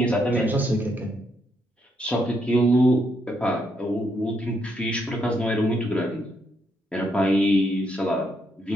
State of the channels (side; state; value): both; normal; correlation 0.77